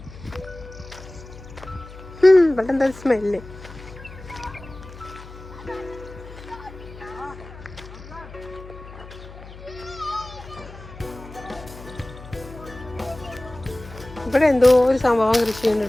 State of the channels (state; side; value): noise; left; hum, 16 dB below the sound